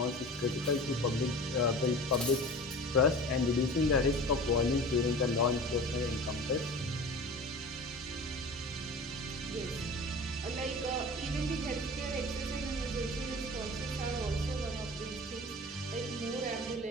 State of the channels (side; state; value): both; normal; correlation 0.37